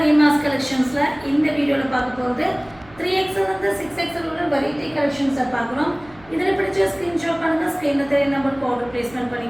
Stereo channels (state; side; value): noise; right; hum, 25 dB below the sound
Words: ரீமாஸ் கலெக்ஷன்ஸ்ல இந்த வீடியோல பார்க்க போறது 3XL வந்து 6XL உள்ள வெரைட்டி கலெக்ஷன்ஸை பார்க்குறோம். இதில் பிடிச்ச ஸ்கிரீன்ஷாட் பண்ணுங்க, ஸ்கிரீன்ல தெரிய நம்பருக்கு ஆர்டர் பிளேஸ்மெண்ட்